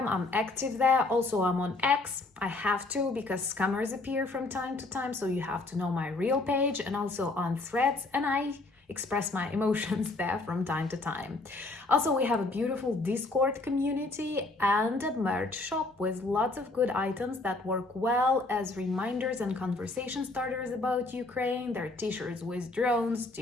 I'm active there. Also, I'm on X. I have to because scammers appear from time to time, so you have to know my real page, and also on Threads, and I express my emotions there from time to time. Also, we have a beautiful Discord community and a merch shop with lots of good items that work well as reminders and conversation starters about Ukraine. There are t-shirts with drones,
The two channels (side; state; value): right; quieter; 3.1 dB